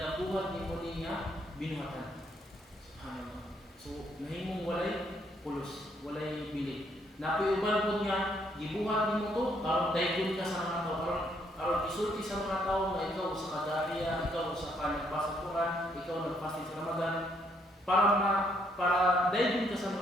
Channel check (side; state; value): both; normal; correlation 0.71